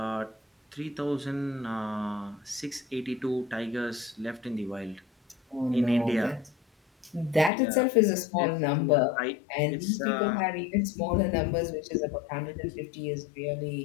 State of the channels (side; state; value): right; drops out; at 7.5 s